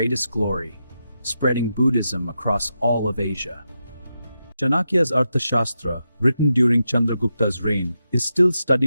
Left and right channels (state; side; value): inverted; both; correlation -0.87